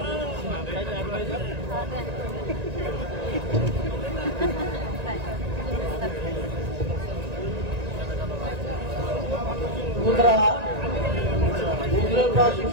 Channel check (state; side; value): late; left; 1.9 ms